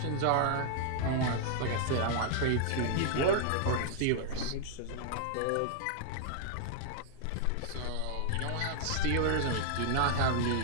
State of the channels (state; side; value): different; both; correlation 0.00